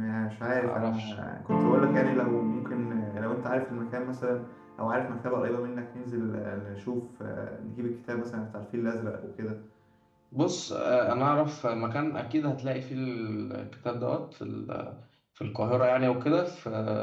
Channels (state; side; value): identical; both; correlation 1.00